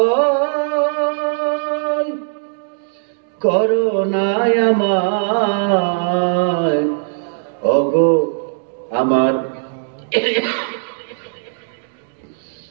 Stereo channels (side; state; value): left; silent; digital silence